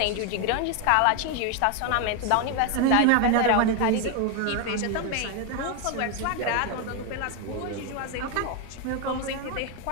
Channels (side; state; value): both; different; correlation 0.01